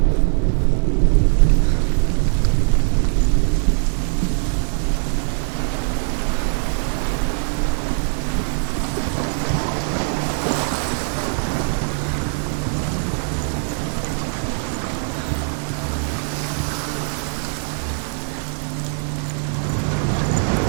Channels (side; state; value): left; silent; 62 dB below the other